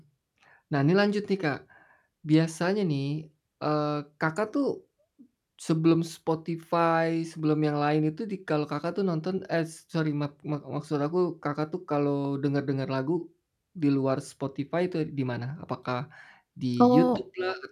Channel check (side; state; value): both; identical; correlation 1.00